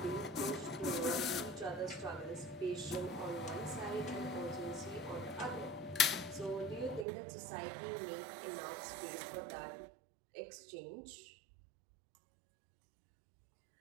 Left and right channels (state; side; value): drops out; left; at 7.1 s